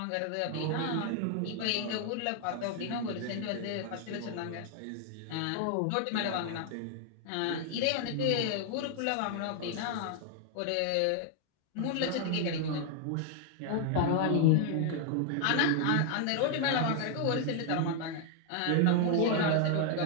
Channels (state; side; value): different; both; correlation 0.00